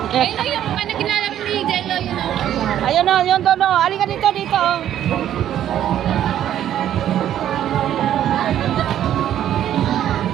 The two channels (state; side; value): quieter; left; 11.1 dB